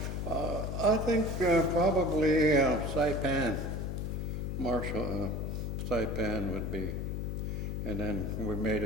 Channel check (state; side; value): noise; left; hum, 3 dB below the sound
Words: I think probably Saipan, Marshall, Saipan would be. And then we made